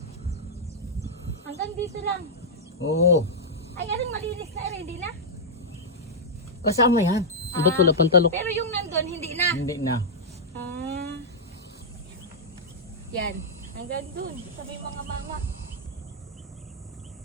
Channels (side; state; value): both; normal; correlation -0.07